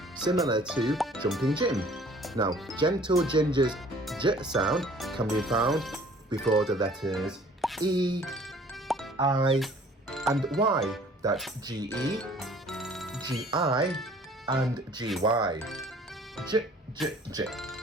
similar to Jumping Jim. Now, Gentle Ginger's J sound can be found before the letters E, I, and Y. That's G-E, G-I, and G-Y. J, J, J.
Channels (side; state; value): both; normal; correlation 0.53